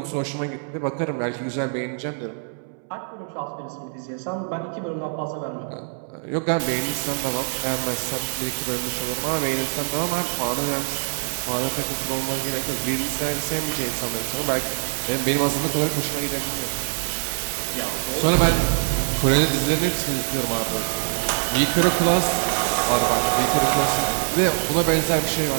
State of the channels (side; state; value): left; silent; 63 dB below the other